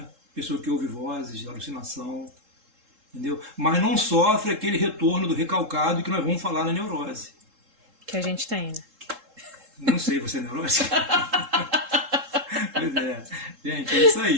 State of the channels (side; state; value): left; late; 3.7 ms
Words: Pessoa que ouve vozes, alucinação, entendeu? Mas não sofre aquele retorno do recalcado que nós vamos falar na neurose. Que a gente tem, né? Não sei, você é neurótico? Pois é. Gente, é isso